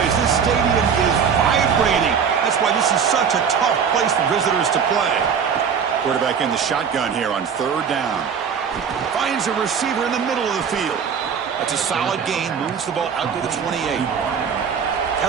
This stadium is vibrating. That's why this is such a tough place for visitors to play. Quarterback in the shotgun here on third down. Finds a receiver in the middle of the field. That's a solid gain. Moves the ball out to the 28.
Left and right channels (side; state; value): left; quieter; 6.9 dB